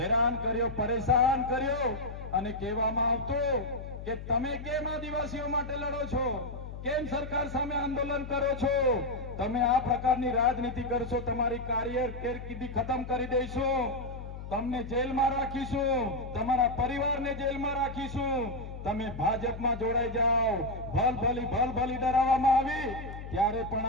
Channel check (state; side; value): noise; left; hum, 10 dB below the sound